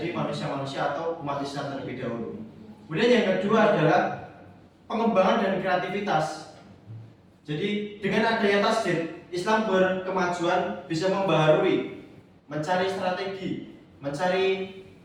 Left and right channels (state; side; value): identical; both; correlation 1.00